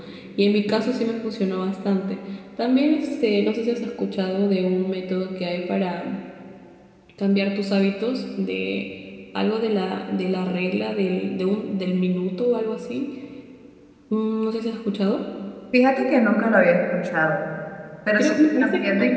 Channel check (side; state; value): both; identical; correlation 1.00